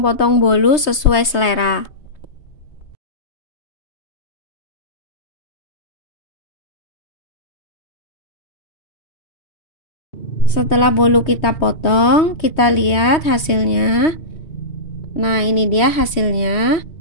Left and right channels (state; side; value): late; right; 3.2 ms